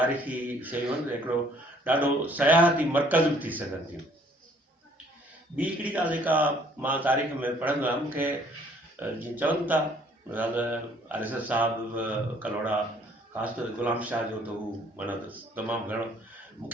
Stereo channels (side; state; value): both; normal; correlation 0.60